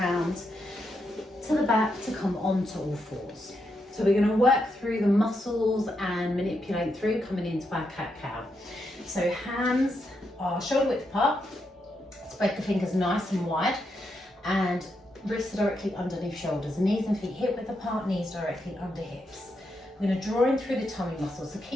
to the back to come onto all fours. So we're going to work through the muscles and manipulate through coming into our cat-cow. So hands are shoulder width apart, spread the fingers nice and wide, and wrists directly underneath shoulders, knees and feet hip width apart, knees directly under hips. We're going to draw in through the tummy muscles, so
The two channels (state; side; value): normal; both; correlation 0.82